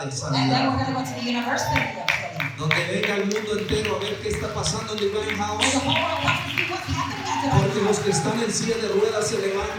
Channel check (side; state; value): both; identical; correlation 1.00